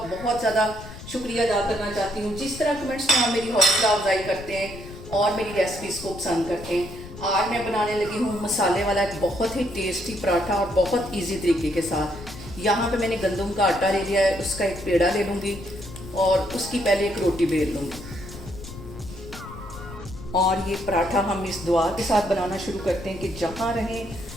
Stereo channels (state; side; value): noise; left; rumble, 14 dB below the sound